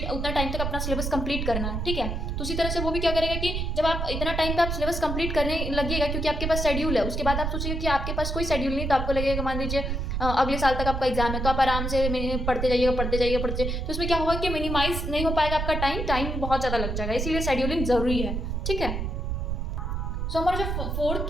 टाइम तक अपना सिलेबस कंप्लीट करना है, ठीक है। तो उसी तरह से वो भी क्या करेगा कि जब आप इतना टाइम पे आप सिलेबस कंप्लीट करने लगिएगा, क्योंकि आपके पास शेड्यूल है, उसके बाद आप सोचिएगा कि आपके पास कोई शेड्यूल नहीं, तो आपको लगेगा मान लीजिए अगले साल तक आपका एग्जाम है, तो आप आराम से पढ़ते जाइएगा। तो इसमें क्या होगा कि मिनिमाइज नहीं हो पाएगा आपका टाइम बहुत ज़्यादा लग जाएगा, इसीलिए शेड्यूलिंग ज़रूरी है, ठीक है। सो हमारा जो फोर्थ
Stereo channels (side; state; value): right; noise; rumble, 2 dB below the sound